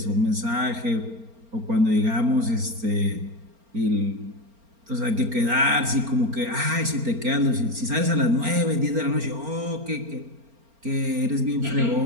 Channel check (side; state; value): left; late; 4.4 ms